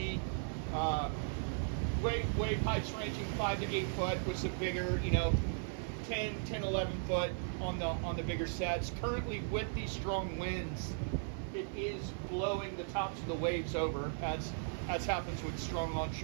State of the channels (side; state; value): left; silent; 53 dB below the other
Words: Wave heights ranging 5 to 8 foot with some bigger, 10, 11 foot on the bigger sets. Currently with these strong winds, it is blowing the tops of the waves over, as happens with strong